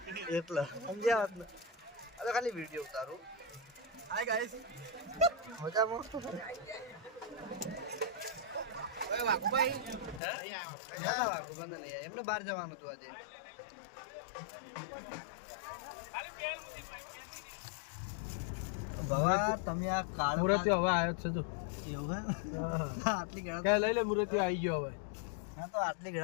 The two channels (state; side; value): drops out; right; at 10.2 s